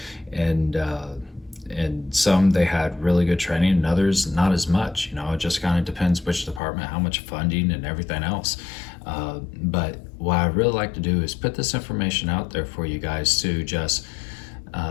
some they had really good training, and others not as much. It just kind of depends which department, how much funding, and everything else. But what I really like to do is put this information out there for you guys to just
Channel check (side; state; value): right; drops out; at 6.6 s